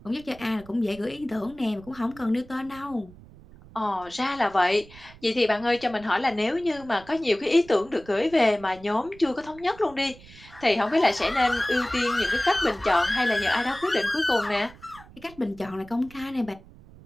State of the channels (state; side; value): noise; right; rumble, 21 dB below the sound